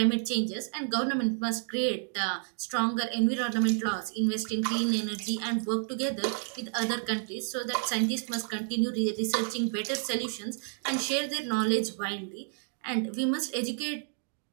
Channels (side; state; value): left; silent; 58 dB below the other